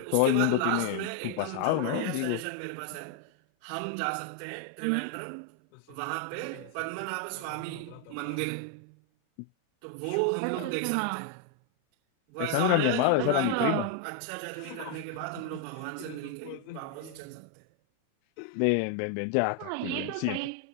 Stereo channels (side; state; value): both; different; correlation 0.00